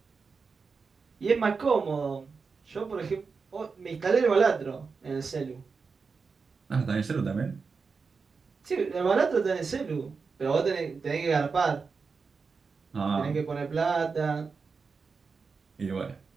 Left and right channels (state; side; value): quieter; left; 5.0 dB